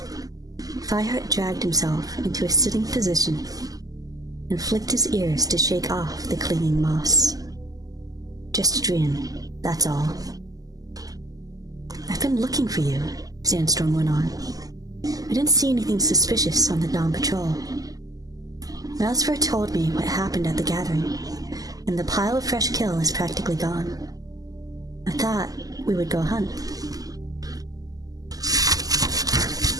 Fireheart dragged himself into a sitting position and flicked his ears to shake off the clinging moss. Just a dream, that's all. I've been looking for you, Sandstorm went on. I didn't see anything suspicious on the dawn patrol. Mousefur told me what happened at the gathering, and the pile of fresh kill is practically gone. I thought we would go hunt.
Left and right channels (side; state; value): left; late; 0.17 ms